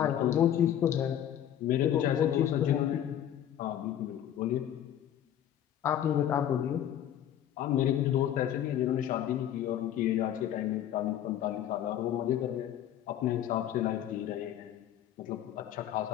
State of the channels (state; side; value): quieter; right; 10.8 dB